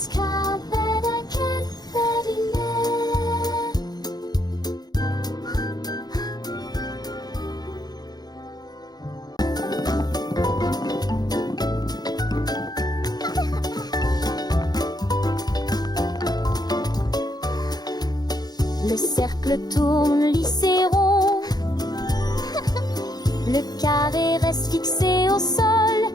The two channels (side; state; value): right; late; 0.19 ms